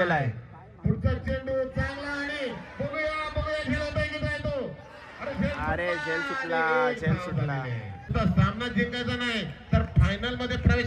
आहे. पुढचा चेंडू चांगला आणि बघूया खेळत आहे तो. अरे झेल सुटला. सामना जिंकायचा नाही तर फायनल मध्ये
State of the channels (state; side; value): identical; both; correlation 1.00